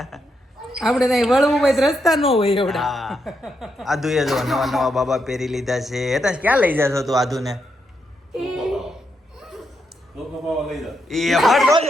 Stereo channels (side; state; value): both; normal; correlation 0.81